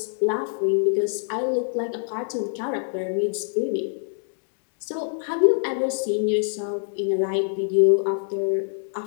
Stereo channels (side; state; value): right; silent; digital silence